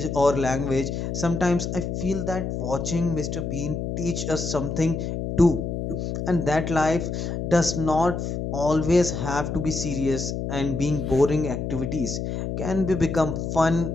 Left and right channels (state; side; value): noise; left; hum, 3 dB below the sound